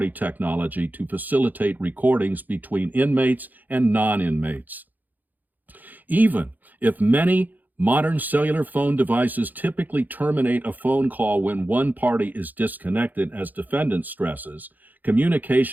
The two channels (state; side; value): late; left; 0.084 ms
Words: technology to facilitate recordings between inmates and non-inmates. Even if many modern cellular phone devices typically terminate a phone call when one party is disconnected, as defendant stresses,